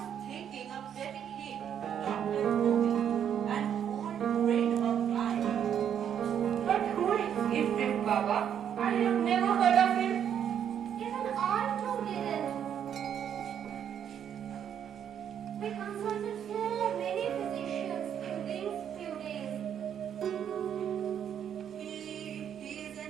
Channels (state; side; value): quieter; left; 9.0 dB